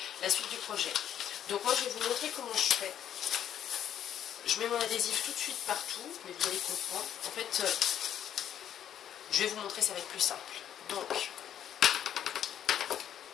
projet. Donc moi, je vais vous montrer comment je fais. Je mets mon adhésif tout de suite partout, mais vous allez comprendre. En fait, je vais vous montrer, ça va être plus simple. Donc,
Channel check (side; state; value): right; quieter; 10.1 dB